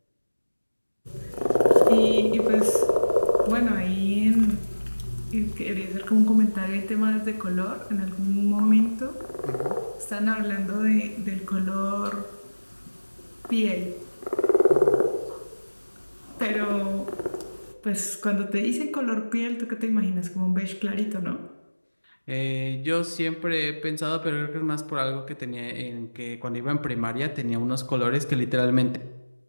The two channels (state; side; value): inverted; both; correlation -1.00